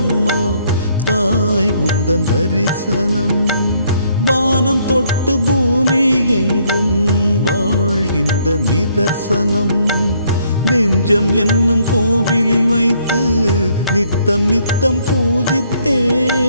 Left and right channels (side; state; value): both; inverted; correlation -0.68